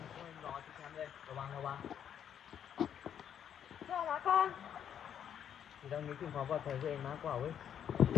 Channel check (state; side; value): quieter; right; 9.0 dB